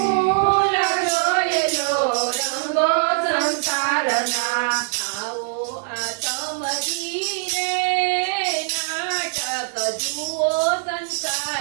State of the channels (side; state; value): left; silent; digital silence